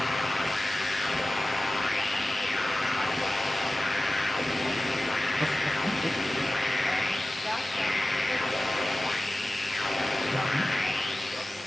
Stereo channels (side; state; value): both; normal; correlation 0.96